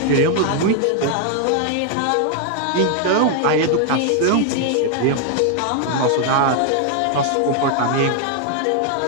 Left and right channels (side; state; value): both; different; correlation 0.00